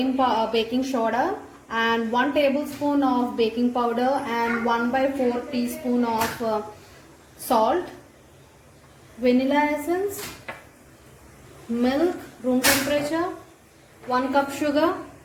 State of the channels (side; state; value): both; identical; correlation 1.00